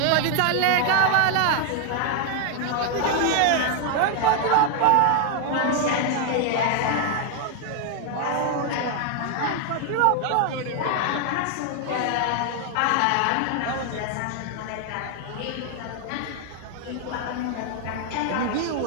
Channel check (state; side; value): different; both; correlation 0.00